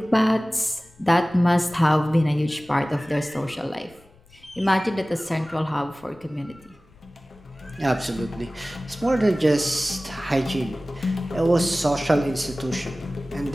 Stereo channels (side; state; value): left; noise; rumble, 28 dB below the sound